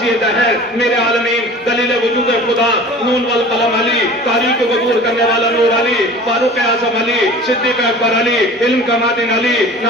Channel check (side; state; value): both; normal; correlation 0.42